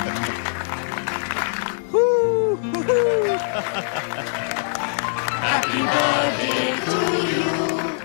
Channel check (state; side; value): silent; right; 59 dB below the other